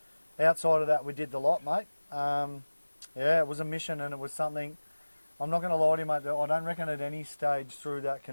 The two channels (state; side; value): inverted; both; correlation -1.00